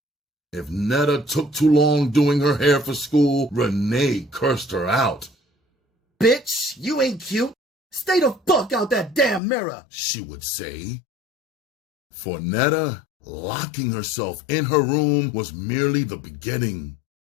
If Netta took too long doing her hair for school, Renee cursed her out. Bitch, you ain't cute. Stay the fuck out that damn mirror, she would say. For Netta, locking herself in her room was merely the beginning.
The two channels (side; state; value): right; drops out; at 9.4 s